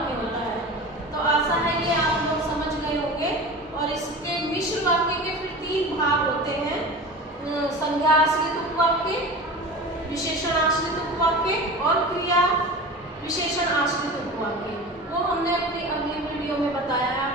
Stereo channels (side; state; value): both; normal; correlation 0.33